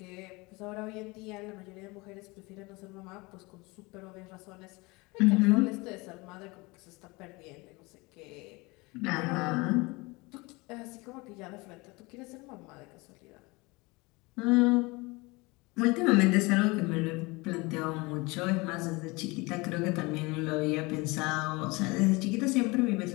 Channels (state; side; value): quieter; right; 24.6 dB